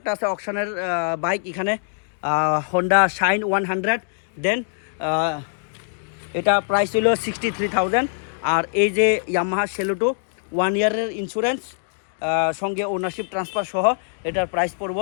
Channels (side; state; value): right; silent; digital silence